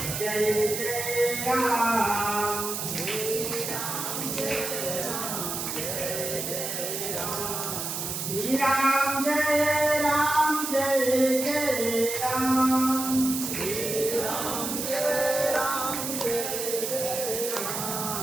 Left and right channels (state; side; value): noise; right; hiss, 3 dB below the sound